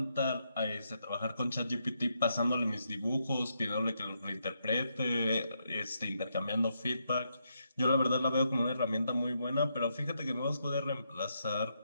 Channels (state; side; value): inverted; both; correlation -0.80